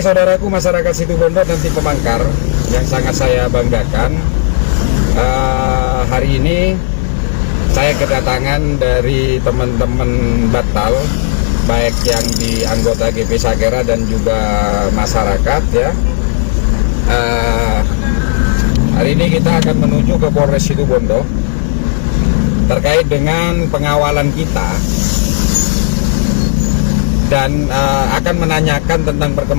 saudaraku masyarakat Situbondo dan tim Pemanggar yang sangat saya banggakan, hari ini saya kedatangan dari teman-teman Batal, baik yang di anggota GP Sakera dan juga masyarakat ya. Hari ini kita akan menuju ke Polres Situbondo terkait dengan pengawalan kita dan akan menanyakan tentang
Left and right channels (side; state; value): right; silent; digital silence